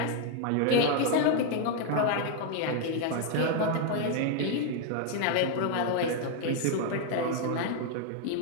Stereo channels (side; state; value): both; different; correlation 0.00